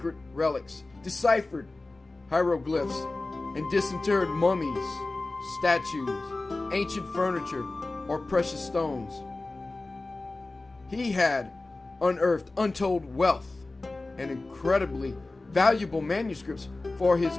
relics, deciphered hieroglyphs, and disinterred mummies, statues, ancient furniture, or precious stones. He had unearthed untold wealth and incredibly valuable manuscripts for his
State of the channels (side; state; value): right; quieter; 3.1 dB